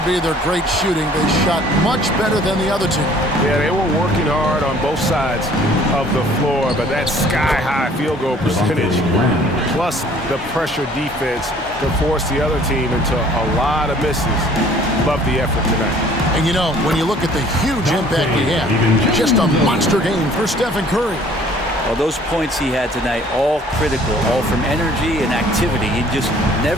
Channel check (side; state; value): both; normal; correlation 0.55